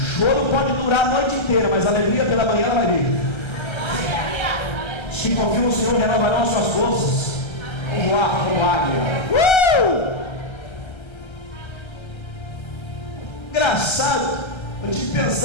pode durar a noite inteira, mas a alegria pela manhã ela vai vir. Se confia no Senhor, renovarão as suas forças. Vamos lá, como águia. Engraçado, eu estive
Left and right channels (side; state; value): right; late; 1.3 ms